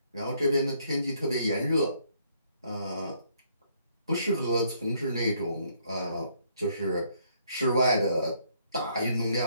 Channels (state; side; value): inverted; both; correlation -0.69